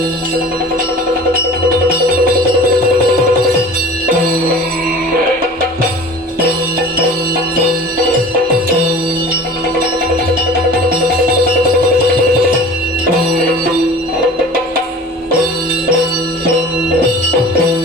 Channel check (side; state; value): both; normal; correlation 0.41